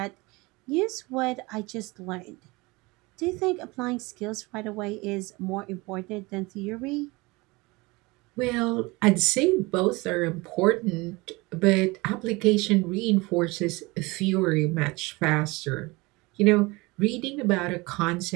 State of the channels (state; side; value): quieter; left; 23.9 dB